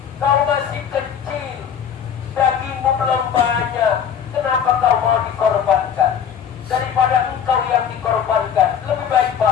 kau masih kecil, dagingmu belum banyak, kenapa kau mau dikorbankan? Daripada engkau yang dikorbankan, lebih baik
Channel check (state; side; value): quieter; right; 8.1 dB